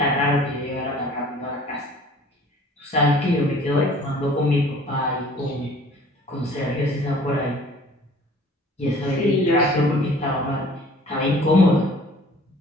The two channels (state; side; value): normal; both; correlation 0.50